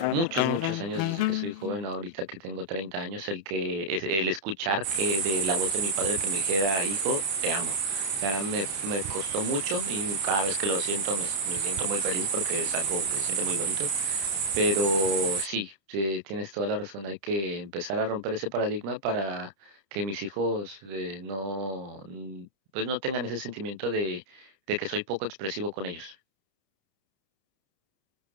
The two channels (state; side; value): late; left; 30 ms